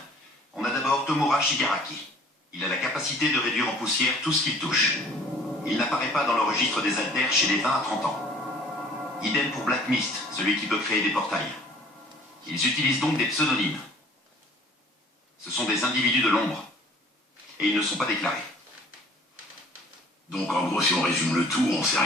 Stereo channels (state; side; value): normal; both; correlation 0.52